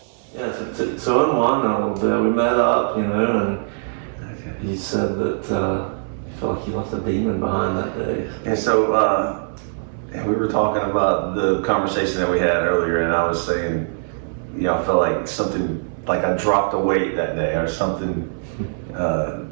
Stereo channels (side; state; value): left; silent; 65 dB below the other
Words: Yeah, so unwind a little bit. We met up, and you said that you felt like you left a demon behind that day. And so we were talking about the conversation that we had earlier, and I was saying, I felt like something, like I dropped a weight that day or something,